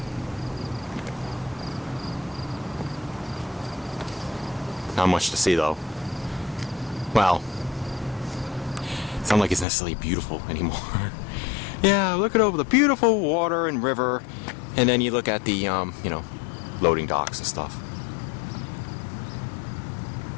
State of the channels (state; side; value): drops out; right; at 9.7 s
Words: Not much to see though. Well, it's not like it's necessarily beautiful anymore. Yeah, look at over the beautiful water and river, and then you look at the, you know, loading docks and stuff.